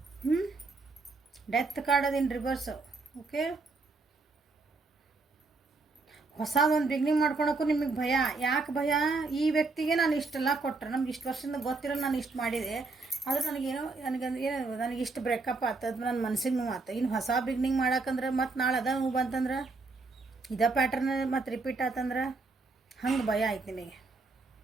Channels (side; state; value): left; quieter; 3.8 dB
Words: ಡೆತ್ ಕಾರ್ಡ್ ಅದು ಇನ್ ರಿವರ್ಸ್. ಓಕೆ, ಹೊಸದೊಂದು ಬಿಗ್ನಿಂಗ್ ಮಾಡ್ಕೊಳಕ್ಕೂ ನಿಮಗೆ ಭಯ. ಯಾಕೆ ಭಯ? ಈ ವ್ಯಕ್ತಿಗೆ ನಾನು ಇಷ್ಟೆಲ್ಲ ಕೊಟ್ಟರೆ, ನಮ್ಗೆ ಇಷ್ಟು ವರ್ಷದಿಂದ ಗೊತ್ತಿರೋ ನಾನು ಇಷ್ಟು ಮಾಡಿದೆ, ಆದ್ರೆ ನನಗೇನೋ ನನಗೆ ಇಷ್ಟು ಬ್ರೇಕಪ್ ಆಗ್ತದೆ, ನನ್ನ ಮನಸ್ಸಿಗೆ ನೋವು ಆತ. ಇನ್ನು ಹೊಸ ಬಿಗ್ನಿಂಗ್ ಮಾಡಕ್ಕಂದ್ರೆ ಮತ್ತು ನಾಳೆ ಅದ ನೋವು ಬಂತಂದ್ರೆ, ಇದೇ ಪ್ಯಾಟರ್ನ್ ಮತ್ತು ರಿಪೀಟ್ ಆತಂದ್ರೆ ಹಂಗೆ ಭಯ ಆಯ್ತು ನಿಮಗೆ.